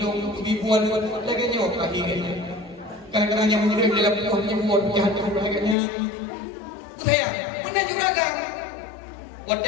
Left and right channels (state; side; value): drops out; right; at 5.8 s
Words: ribuan lagi nyoh kaki ni. Kadang-kadang yang murid dalam punya buat jahat tu lagi-nya. Saya mana juga kan. Waktu